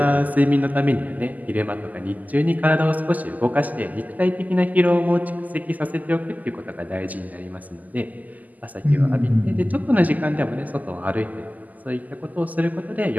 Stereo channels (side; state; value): left; late; 0.080 ms